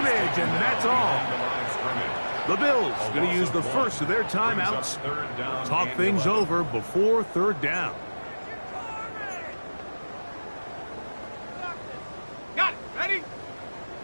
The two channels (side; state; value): both; inverted; correlation -1.00